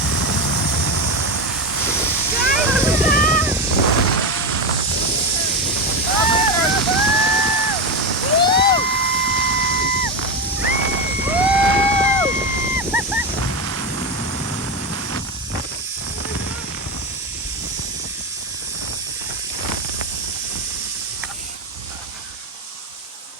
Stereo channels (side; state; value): both; normal; correlation 0.14